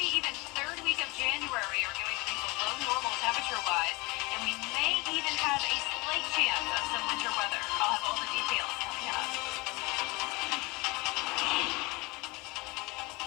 even third week of January are going to be below normal temperature-wise, and we may even have a slight chance of some winter weather. I'll have all the details coming up.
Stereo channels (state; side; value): quieter; right; 24.8 dB